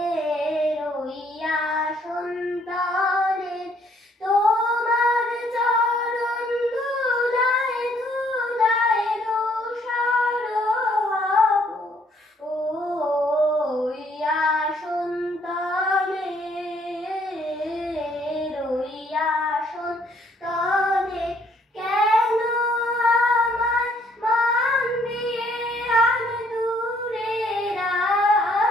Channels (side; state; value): both; normal; correlation 0.65